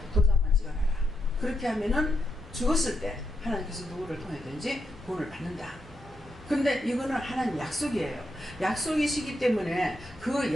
도장만 찍어놔라. 그렇게 하면은 죽었을 때 하나님께서 누구를 통해든지 구원을 받는다. 근데 이거는 하나님 약속이에요. 약속이시기 때문에 그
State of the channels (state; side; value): normal; both; correlation 0.83